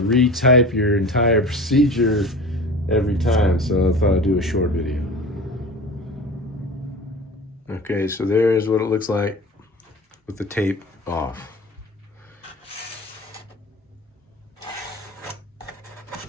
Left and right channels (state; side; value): normal; both; correlation 0.36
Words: your entire procedure every time. So I thought I'd do a short video. Okay, so there's what it looks like with the tape off.